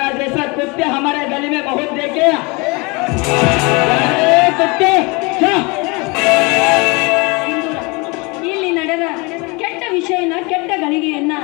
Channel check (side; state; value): right; quieter; 27.7 dB